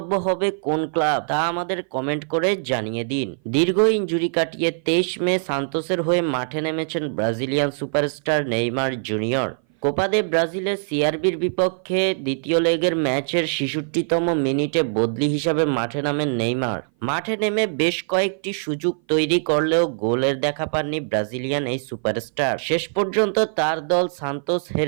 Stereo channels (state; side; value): silent; left; 58 dB below the other